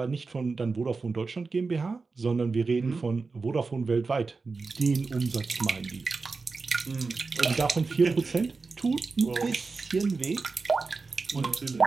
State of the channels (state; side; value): quieter; left; 4.2 dB